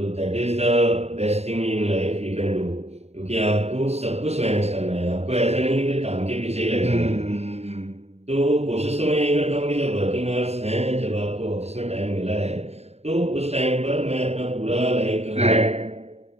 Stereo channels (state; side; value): late; left; 0.31 ms